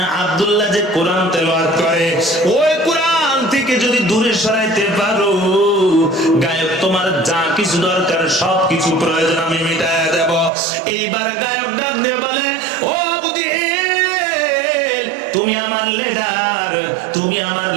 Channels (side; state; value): left; drops out; at 10.5 s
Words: আব্দুল্লাহ যে কোরআন তেলাওয়াত করে ওই কোরআন থেকে যদি দূরে সরাইতে পারো, গায়ক তোমার যা কিছু দরকার সব কিছু প্রয়োজন আমি মিটায়া দেব। এইবার গায়ক ডাক দিয়ে বলে, ও আবু জেহেল তুমি আমার লিডার, তুমি আমার